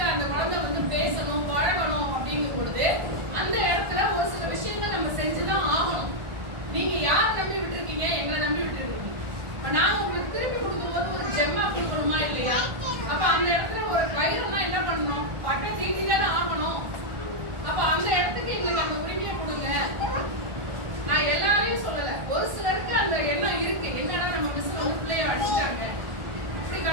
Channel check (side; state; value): left; late; 1.4 ms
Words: அந்த குழந்தை வந்து பேசணும், பழகணும் அப்படிங்கும் பொழுது அந்த இடத்துல ஒரு சில விஷயங்கள் நம்ம செஞ்சுதான் ஆகணும். நீங்க யார் நம்பி விட்டுருக்கீங்க? எங்களை நம்பி விட்டுருக்கீங்க. இப்ப நாங்க உங்களுக்கு திருப்பி கொடுக்கும்போது ஒரு ஜெம்மா கொடுக்கணுமா இல்லையா? அப்ப அந்த இடத்துல ஒரு கயிறுனா என்ன பண்ணணும்? பட்டை தீட்டி தானே ஆகணும். அப்ப அந்த இடத்துக்கு எங்களுக்கு அந்த உரிமையை கொடுங்க. நான் எல்லாரையும் சொல்லல, ஒரு சிலருக்கு அந்த எண்ணம் இருக்கு, என்னன்னா நம்ம மிஸ் வந்து பிள்ளைய அடிச்சிட்டாங்க. இப்படி